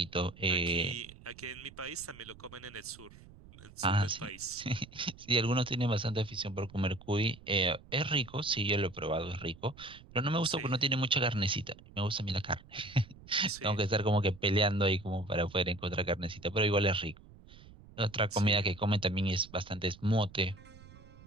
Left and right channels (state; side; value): noise; right; rumble, 21 dB below the sound